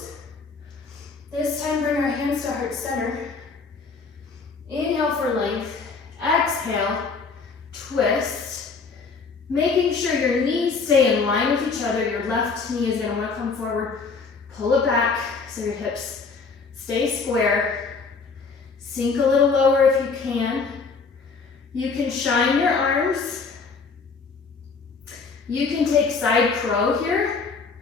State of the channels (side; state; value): right; quieter; 4.7 dB